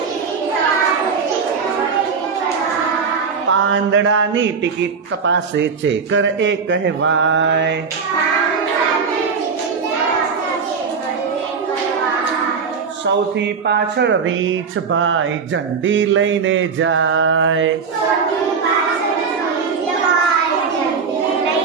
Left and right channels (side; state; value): left; quieter; 5.6 dB